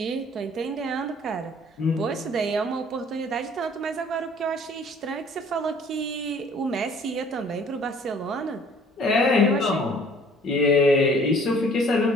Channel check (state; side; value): normal; both; correlation 0.54